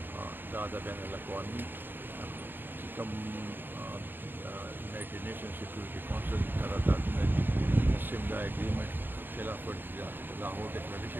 دا د بین الاقوامي چې کوم یونایټډ نیشن سیکورټي کونسل قراردادونه دي سیملا اګریمنټ خلاف ورزي ده لاهور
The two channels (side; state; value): left; late; 0.096 ms